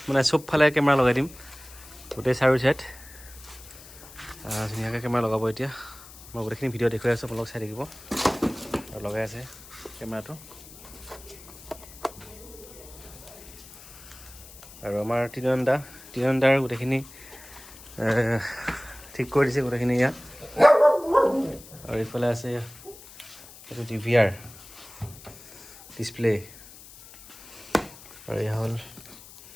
মানে চবফালে কেমেৰা লগাই দিম গোটেই চাৰি চাইড ধুনীয়াকৈ কেমেৰা লগাব এতিয়া মই গোটেইখিনি ভিডিঅ' দেখুৱাই আছোঁ আপোনালোক চাই থাকিব আৰু লগাই আছে কেমেৰাটো আৰু আমাৰ তিনিনদাৰ গোটেইখিনি ঠিক কৰি দিছে গোটেইখিনি ইয়াত আৰু এইফালে আছে এইটো DVR ডিছপ্লে আৰু এয়া হ'ল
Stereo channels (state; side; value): noise; left; hiss, 18 dB below the sound